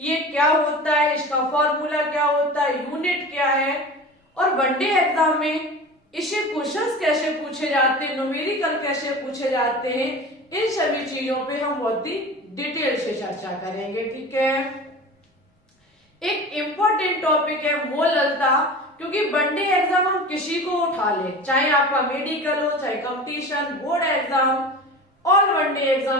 क्या होता है, इसका फॉर्मूला क्या होता है, यूनिट क्या है और वनडे एग्जाम में इससे क्वेश्चंस कैसे पूछे जाते हैं, न्यूमेरिकल कैसे पूछे जाते हैं, इन सभी चीजों पे हम बहुत ही डिटेल से चर्चा करेंगे। ठीक है, एक इम्पोर्टेंट टॉपिक है मोललता, क्योंकि वनडे एग्जाम हम किसी को उठा ले, चाहे आपका मेडिकल हो, चाहे competition, board exam, all one day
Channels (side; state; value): both; normal; correlation 0.35